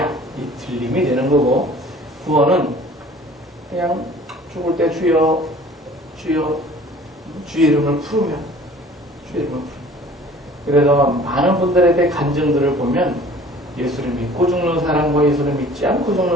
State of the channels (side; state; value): both; normal; correlation 0.49